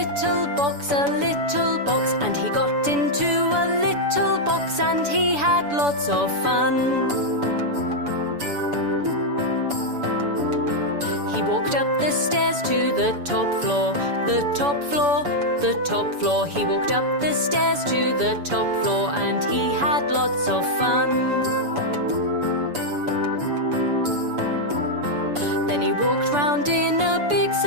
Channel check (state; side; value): late; left; 7.0 ms